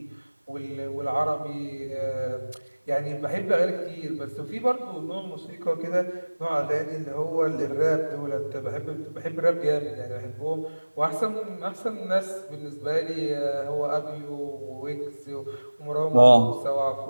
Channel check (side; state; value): both; inverted; correlation -1.00